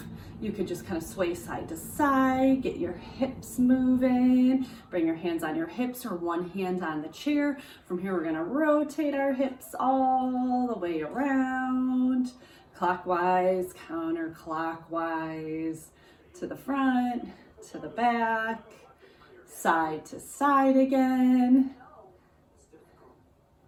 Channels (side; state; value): both; identical; correlation 1.00